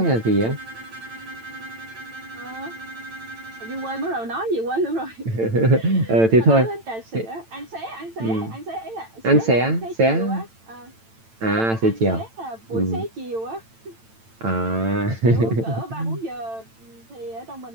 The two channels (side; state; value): left; late; 8.9 ms